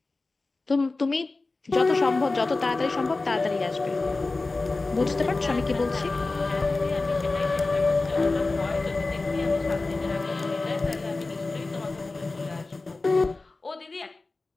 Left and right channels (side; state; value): right; quieter; 3.4 dB